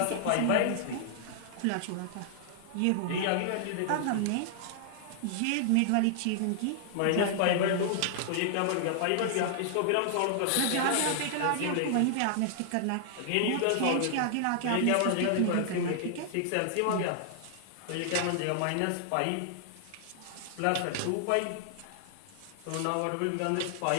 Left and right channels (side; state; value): both; different; correlation -0.01